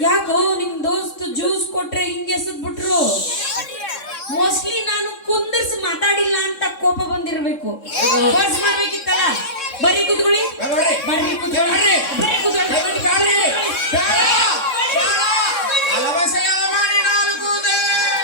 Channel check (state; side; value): late; right; 3.6 ms